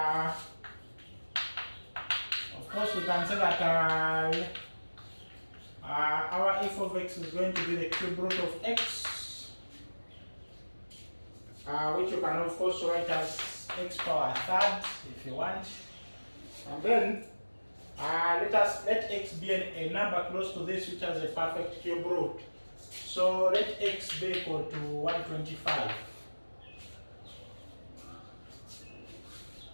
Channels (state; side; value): inverted; both; correlation -1.00